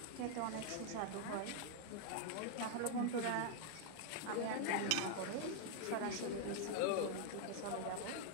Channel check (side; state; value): both; different; correlation 0.00